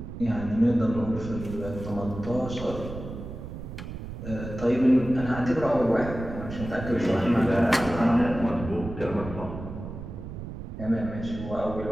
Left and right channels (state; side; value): noise; right; rumble, 9 dB below the sound